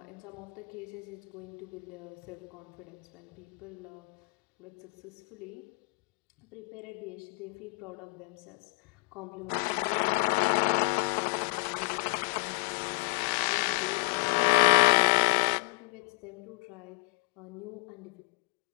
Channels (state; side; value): quieter; right; 30.9 dB